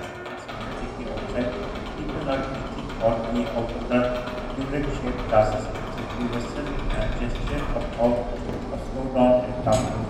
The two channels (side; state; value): both; identical; correlation 1.00